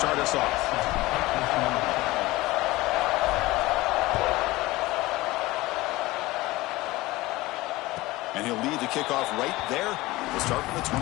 us off. And he'll lead the kickoff right there. We'll start from the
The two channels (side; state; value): right; quieter; 19.5 dB